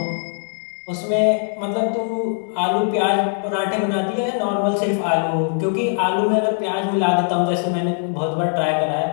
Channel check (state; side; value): silent; right; digital silence